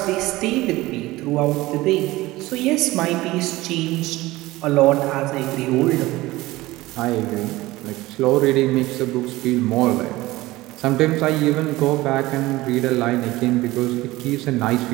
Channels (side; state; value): left; quieter; 18.8 dB